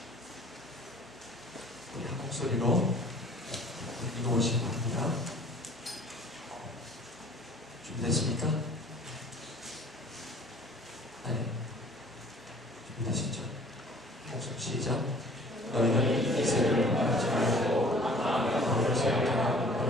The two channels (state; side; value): normal; both; correlation 0.51